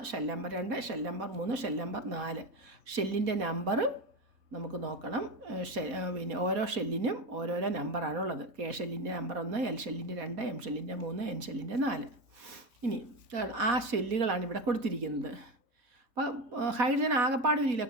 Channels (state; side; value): late; left; 4.2 ms